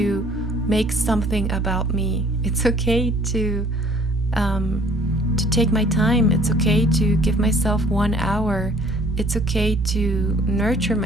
make something about me. It's okay to take my time. It's okay to give myself 1 hour. It's okay to nurture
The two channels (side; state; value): both; normal; correlation 0.56